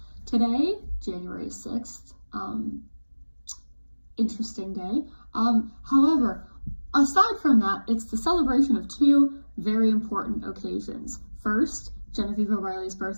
Today, January 6th, interesting day. However, aside from that, it's the celebration of two very important occasions. First, Genevieve O'Reilly's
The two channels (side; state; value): both; inverted; correlation -1.00